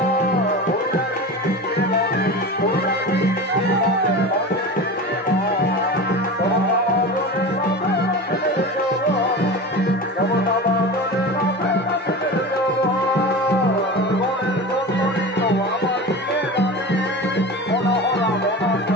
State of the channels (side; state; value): both; normal; correlation 0.29